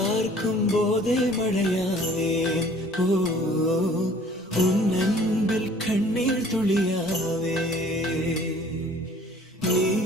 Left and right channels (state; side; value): normal; both; correlation 0.52